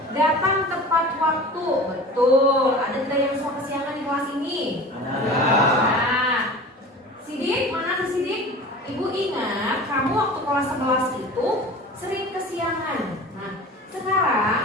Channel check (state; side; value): normal; both; correlation 0.38